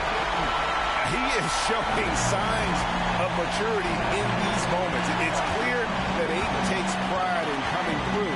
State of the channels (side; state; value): both; identical; correlation 1.00